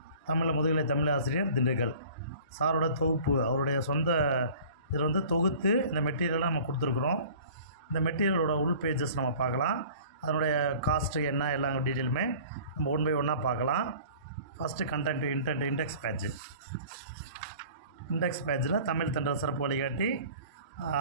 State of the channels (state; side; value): inverted; both; correlation -0.46